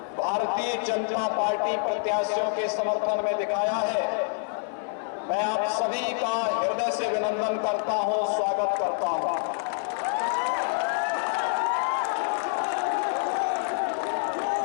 भारतीय जनता पार्टी प्रत्याशियों के समर्थन में दिखाया है, मैं आप सभी का हृदय से अभिनंदन करता हूं, स्वागत करता हूं।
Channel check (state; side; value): silent; right; 60 dB below the other